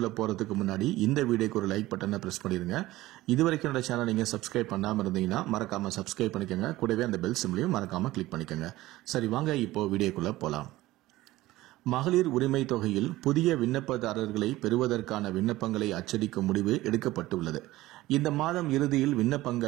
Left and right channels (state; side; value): quieter; left; 17.3 dB